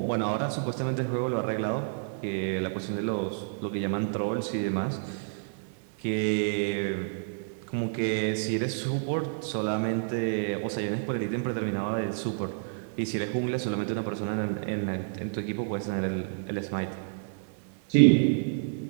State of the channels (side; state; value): left; silent; 58 dB below the other